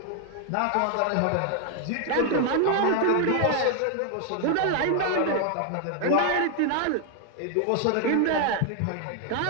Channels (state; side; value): different; both; correlation 0.00